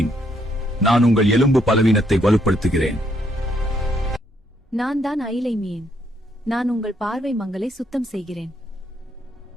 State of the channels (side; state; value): both; normal; correlation 0.73